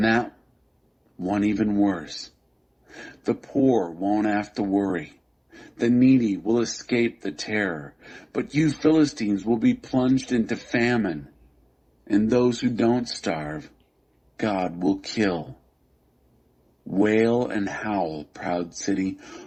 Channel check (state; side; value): identical; both; correlation 1.00